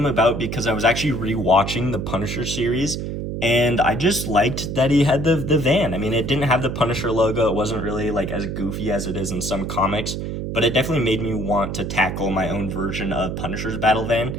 about because I was actually rewatching the Punisher series, and I just liked that he had the van. I mean, it didn't have the Punisher logo. It wasn't really like as goofy as it is in some comics, but it definitely made me want to tackle my own version of Punisher's battle van,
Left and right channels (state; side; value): noise; right; hum, 4 dB below the sound